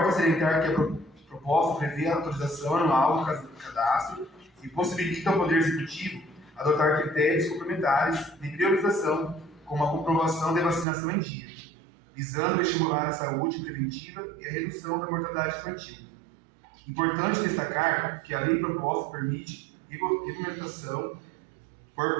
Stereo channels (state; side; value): drops out; left; at 10.9 s